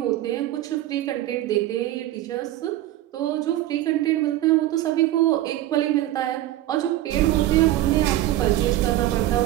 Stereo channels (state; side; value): quieter; left; 14.6 dB